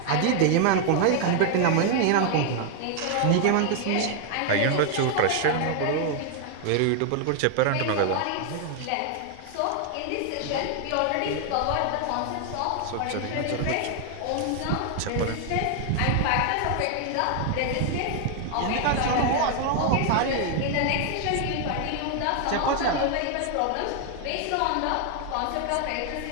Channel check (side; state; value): both; different; correlation 0.00